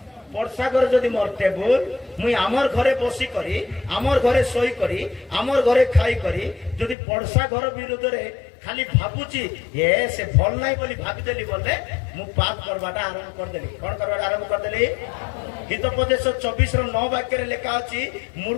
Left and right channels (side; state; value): right; drops out; at 7.0 s